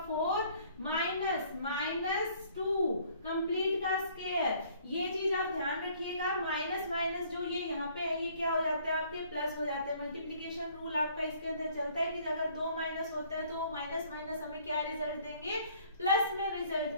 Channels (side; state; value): both; inverted; correlation -0.59